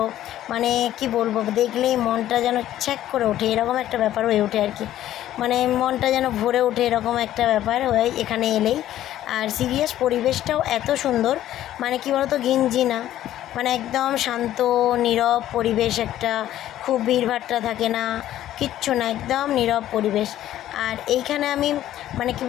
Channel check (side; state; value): right; quieter; 12.8 dB